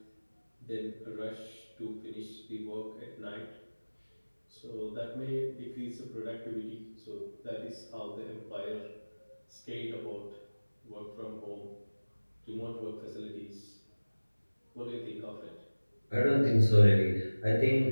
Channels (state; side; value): inverted; both; correlation -1.00